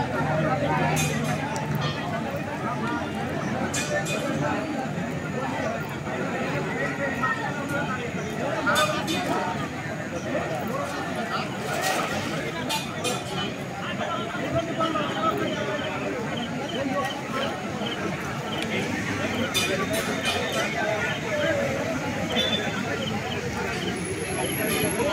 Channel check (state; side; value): identical; both; correlation 1.00